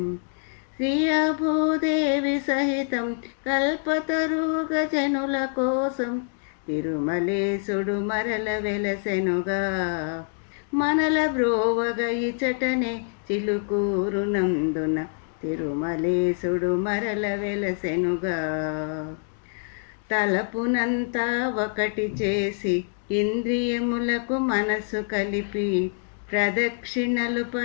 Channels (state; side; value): silent; right; 57 dB below the other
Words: శ్రియా భూదేవి సహితం కల్పతరుగ జనుల కోసం తిరుమలేశుడు మరల వెలసెనుగా. మనల బ్రోవగ ఇచటనే చిలుకూరునందున తిరుమలేశుడు మరల వెలసెనుగా. తలపునంతా ఒకటి చేసి ఇంద్రియములకు మనసు కలిపి ప్రదక్షిణలు